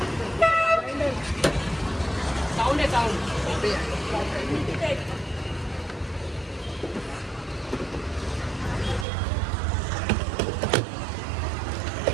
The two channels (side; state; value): left; drops out; at 9.1 s